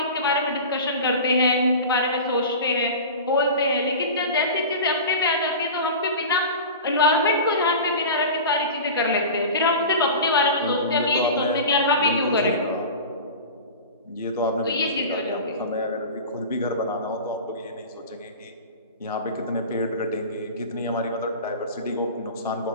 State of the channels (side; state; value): both; inverted; correlation -0.33